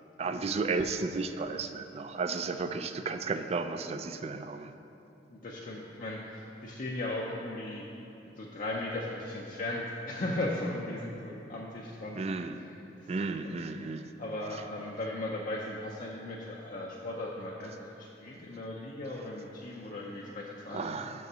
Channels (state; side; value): normal; both; correlation 0.35